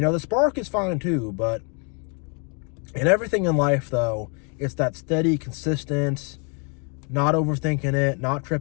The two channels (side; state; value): right; quieter; 37.8 dB